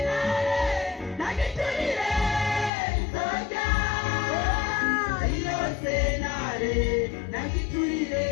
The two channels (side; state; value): right; drops out; at 2.7 s